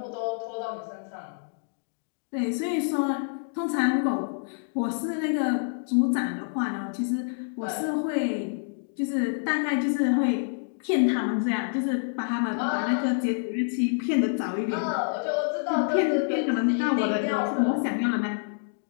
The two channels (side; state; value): right; silent; digital silence